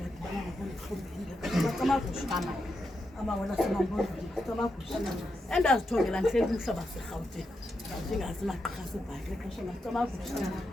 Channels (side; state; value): both; normal; correlation 0.85